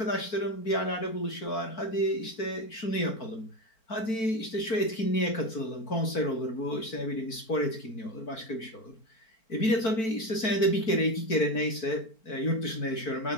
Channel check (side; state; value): right; late; 4.5 ms